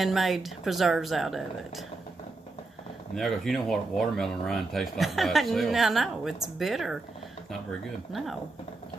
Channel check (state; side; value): quieter; left; 3.3 dB